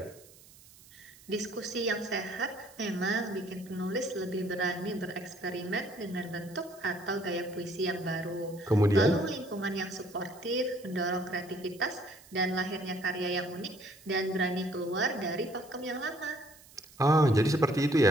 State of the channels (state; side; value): noise; right; hiss, 23 dB below the sound